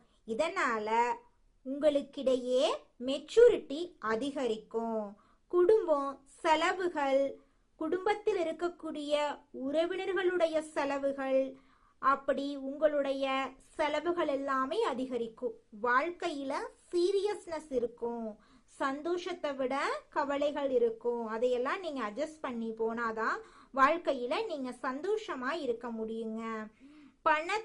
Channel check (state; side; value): identical; both; correlation 1.00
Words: இதனால உங்களுக்கிடையே மெச்சூரிட்டி அதிகரிக்கும். குடும்பம் செலவுகள், குடும்பத்தில் இருக்கக்கூடிய உறவினர்களுடைய செலவுகள், அப்படி உங்களுடைய செலவுகள் எல்லாமே அதிகரிக்கும். வாழ்க்கையில சீரியஸ்னஸ் இருக்கும், சந்தோஷத்தை விட கவலைகள் இருக்கும். அதையெல்லாம் நீங்க அட்ஜஸ்ட் பண்ணி போனாதான் வாழ்க்கையில நீங்க சந்தோஷமா இருக்க முடியுங்க.